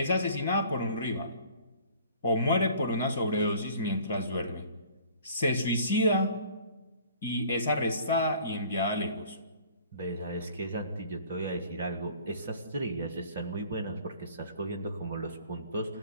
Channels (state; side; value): inverted; both; correlation -0.50